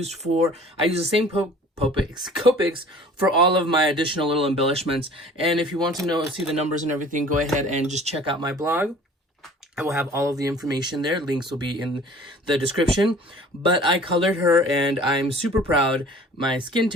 the same Copics for all of my additional little embellishments. And if you want to see the numbers and everything, go ahead and just check out my blog. I will have all of the information there. Links will be in the description. But I colored her and I'm super proud. My skin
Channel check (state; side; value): normal; both; correlation 0.48